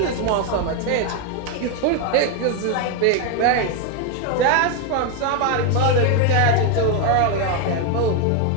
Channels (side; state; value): both; different; correlation 0.01